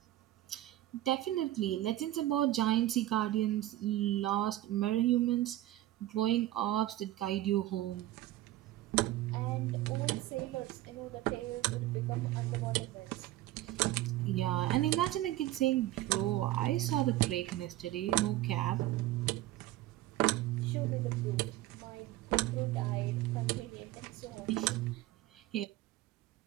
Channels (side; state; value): left; quieter; 15.4 dB